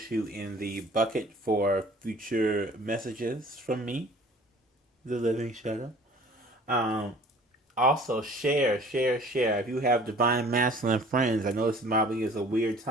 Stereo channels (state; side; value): normal; both; correlation 0.50